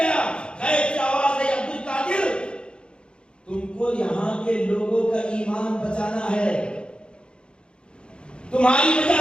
غیب سے آواز ہے, عبد القادر تم کو یہاں کے لوگوں کا ایمان بچانا ہے, تمہاری وجہ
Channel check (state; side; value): late; right; 0.054 ms